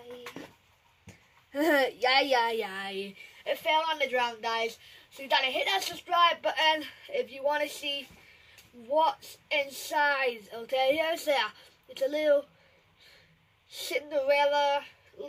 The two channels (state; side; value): identical; both; correlation 1.00